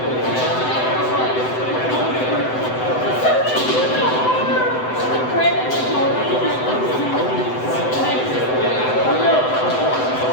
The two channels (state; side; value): late; right; 7.9 ms